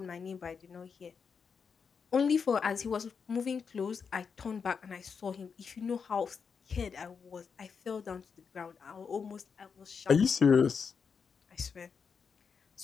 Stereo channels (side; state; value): right; quieter; 6.0 dB